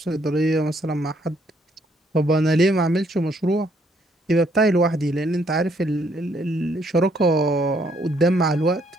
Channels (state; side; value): normal; both; correlation 0.69